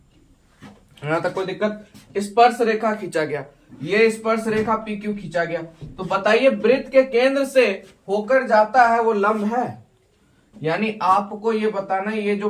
यहां तक कोई दिक्कत। स्पर्श रेखा खींचा गया, ये स्पर्श रेखा PQ खींचा गया। तो बताइए वृत्त के केंद्र से होकर जाता है वो लंब है। यानी आपको ये बताना है ये जो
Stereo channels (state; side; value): identical; both; correlation 1.00